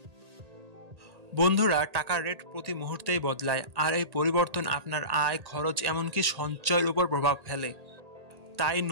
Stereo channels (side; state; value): left; late; 1.8 ms